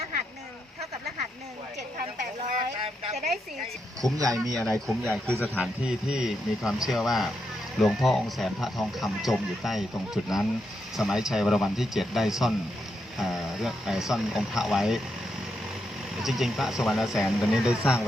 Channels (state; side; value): normal; both; correlation 0.82